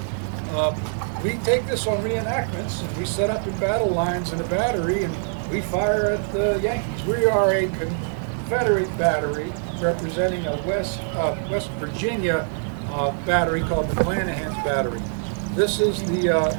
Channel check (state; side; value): silent; left; digital silence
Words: we take this on reenactments, and we set up in battle lines in a battery, and we fire at the Yankees. We are a Confederate battery representing a West Virginia battery called the McClanahan's battery. This is the